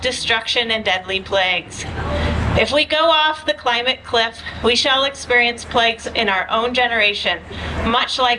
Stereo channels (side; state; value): both; identical; correlation 1.00